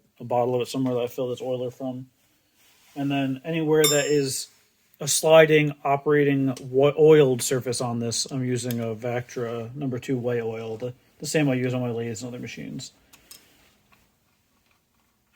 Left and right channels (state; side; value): identical; both; correlation 1.00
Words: bottle of it somewhere that I fill this oiler from. And then anywhere that is a sliding, operating oiled surface on this, I'm using a Vactra #2 white oil, the same I use on my lathes and other machines.